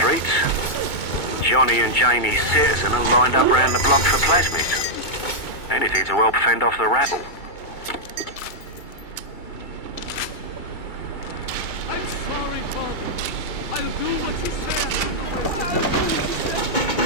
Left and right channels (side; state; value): right; late; 2.2 ms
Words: Johnny and Jamie's citizen are lined up round the block for plasmids. Anything to help fend off the rabble. I'm sorry, Father. I'll do what you say after the winter.